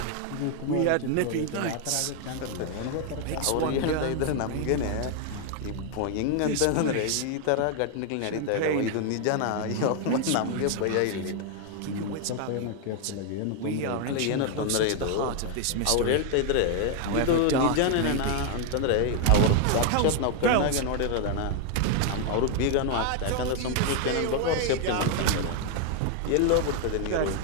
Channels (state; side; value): different; both; correlation 0.00